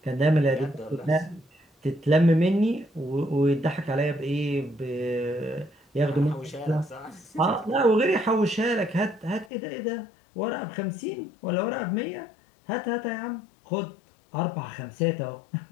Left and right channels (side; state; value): right; drops out; at 9.5 s